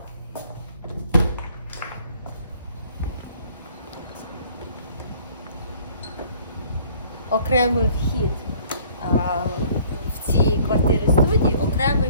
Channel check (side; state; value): both; inverted; correlation -0.55